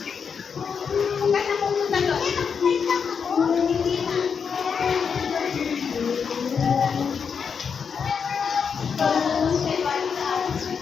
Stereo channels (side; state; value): right; quieter; 6.4 dB